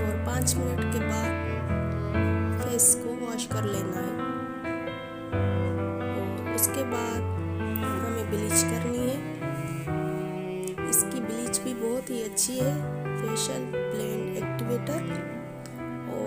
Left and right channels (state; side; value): identical; both; correlation 1.00